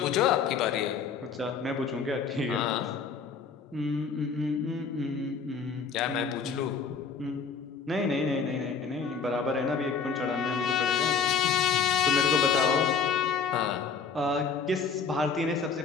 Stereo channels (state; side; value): quieter; right; 5.7 dB